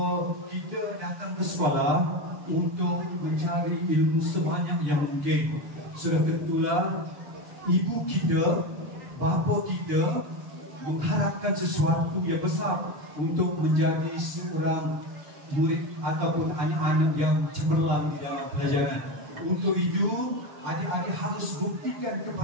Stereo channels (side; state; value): left; late; 6.9 ms